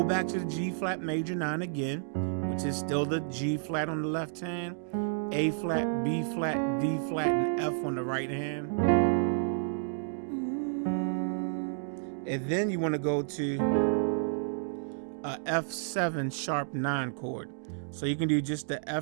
back to the G flat major 9 again, which is still the G flat on the left hand, A flat, B flat, D flat, and F on the right hand. And then you want to go to a F7 sharp 9 chord. So you can do just the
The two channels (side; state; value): left; silent; digital silence